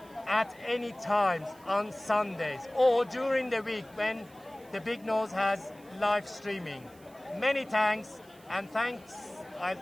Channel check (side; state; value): right; noise; hiss, 27 dB below the sound